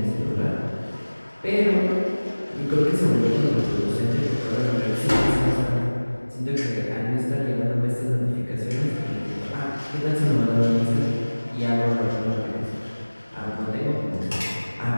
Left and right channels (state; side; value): inverted; both; correlation -1.00